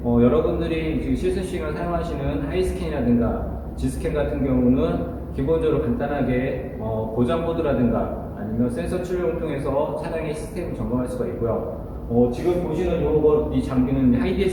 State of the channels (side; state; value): both; identical; correlation 1.00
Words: 여러분들이 지금 실습 시간을 사용하시는 하이스캔이라든가 지스캔 같은 경우는 기본적으로 간단하게 고장보드라든가 아니면 센서 출력을 통해서 차량의 시스템을 점검할 수가 있고요. 지금 보시는 이 장비는